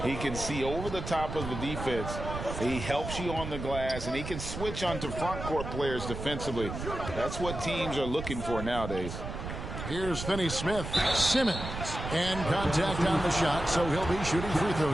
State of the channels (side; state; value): right; noise; rumble, 7 dB below the sound